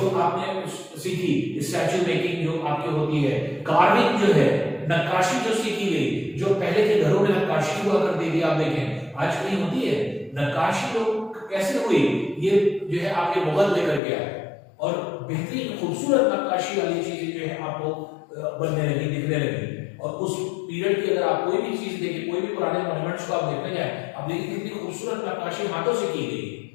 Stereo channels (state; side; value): drops out; right; at 14.0 s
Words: आपने सीखी, स्टैचू मेकिंग जो आपकी होती है, कार्विंग जो है, नक्काशी जो सीखी गई, जो पहले के घरों में नक्काशी हुआ करती थी, आप देखें आज कहीं होती है नक्काशी, लोग कैसे हुई, ये जो है आपके मुगल लेकर के आए और बेहतरीन खूबसूरत नक्काशी वाली चीजें जो है आपको बनने लगी, दिखने लगी। और उस पीरियड की अगर आप कोई भी चीज देखिए, कोई भी पुराने मॉन्यूमेंट्स को आप देखने जाए, आप देखिए कितनी खूबसूरत नक्काशी हाथों से की गई